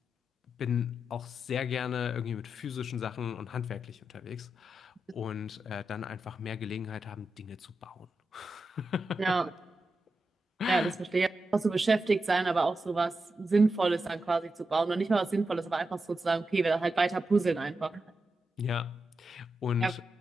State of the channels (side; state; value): both; normal; correlation 0.88